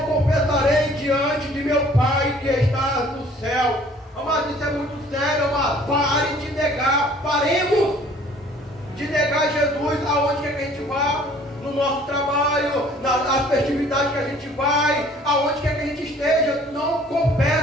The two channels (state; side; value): normal; both; correlation 0.55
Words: confessarei diante de meu Pai que está no céu. Amado, isso é muito sério, amado. Pare de negar, paremos de negar Jesus aonde quer que a gente vá, no nosso trabalho, nas festividades que a gente vai, aonde quer que a gente esteja. Não